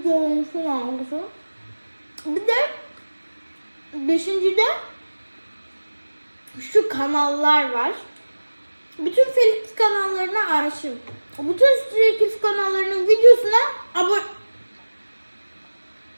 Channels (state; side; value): inverted; both; correlation -1.00